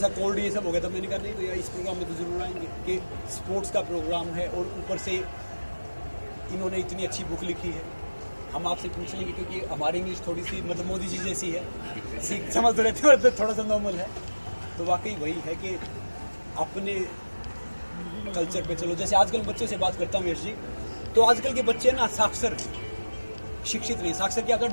कोल्ड ये सब हो गया। तो मैंने कहा नहीं भैया इस प्रोग्राम में तो जरूर आएंगे कि स्पोर्ट्स का प्रोग्राम है और ऊपर से इन्होंने इतनी अच्छी बुक लिखी है। हम आपसे पूछ लेंगे क्योंकि हमारी इंग्लिश थोड़ी सी मतलब मोदी जी जैसी है, समझ रहते हैं, थोड़ा सा नॉर्मल है। तो वाकई वही है कि अपने कल्चर पे चलो। जैसे आजकल बच्चों से बात करता हूँ यश जी, तो आजकल के बच्चे ना साक्षर, शिक्षित नहीं। साक्षर क्या होता है?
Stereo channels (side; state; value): both; inverted; correlation -1.00